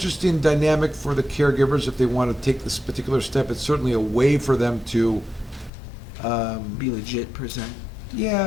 dynamic for the caregivers if they want to take this particular step. It's certainly a way for them to Be legit per se. yeah,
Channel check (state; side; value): drops out; right; at 5.7 s